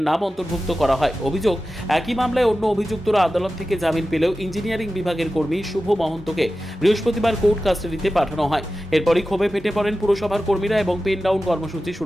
নাম অন্তর্ভুক্ত করা হয়। অভিযোগ, একই মামলায় অন্য অভিযুক্তরা আদালত থেকে জামিন পেলেও ইঞ্জিনিয়ারিং বিভাগের কর্মী শুভ মহন্তকে বৃহস্পতিবার কোর্ট কাস্টাডিতে পাঠানো হয়। এরপরই ক্ষোভে ফেটে পড়েন পুরসভার কর্মীরা এবং পেন ডাউন কর্মসূচি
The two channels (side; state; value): both; normal; correlation 0.94